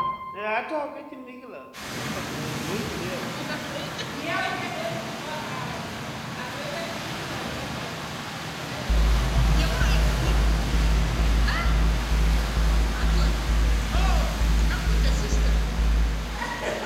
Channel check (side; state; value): both; identical; correlation 1.00